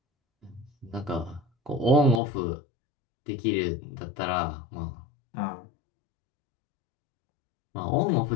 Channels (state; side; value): drops out; right; at 2.2 s